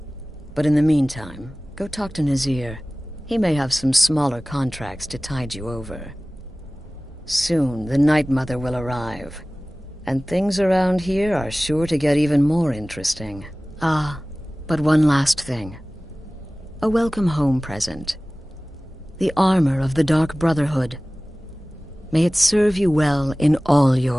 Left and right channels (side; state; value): both; normal; correlation 0.98